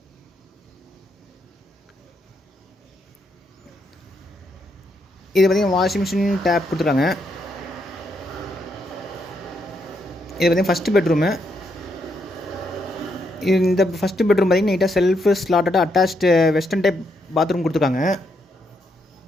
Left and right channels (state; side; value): normal; both; correlation 0.78